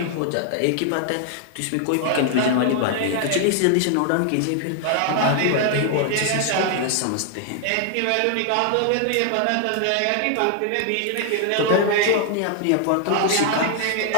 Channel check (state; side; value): different; both; correlation 0.00